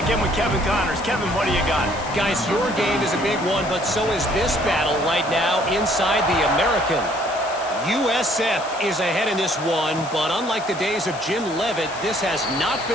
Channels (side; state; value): left; noise; hiss, 16 dB below the sound